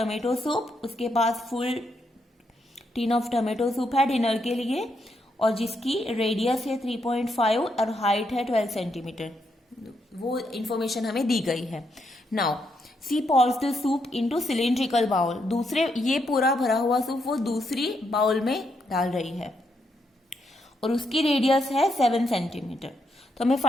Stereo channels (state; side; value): normal; both; correlation 0.79